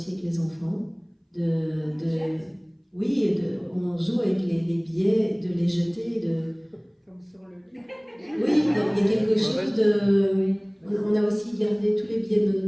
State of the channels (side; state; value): both; identical; correlation 1.00